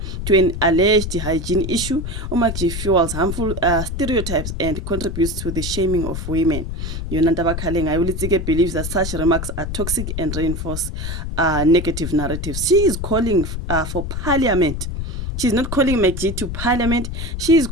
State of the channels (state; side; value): noise; left; rumble, 5 dB below the sound